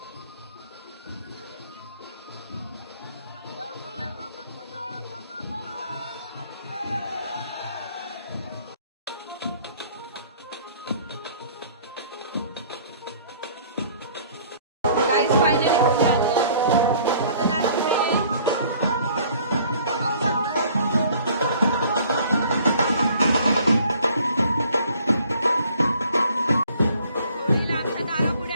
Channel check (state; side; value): inverted; both; correlation -0.55